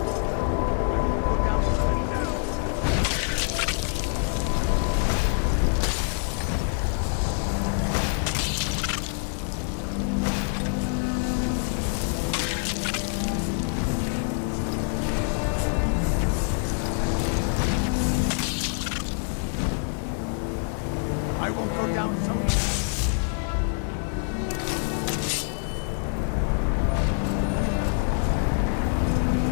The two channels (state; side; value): silent; right; 59 dB below the other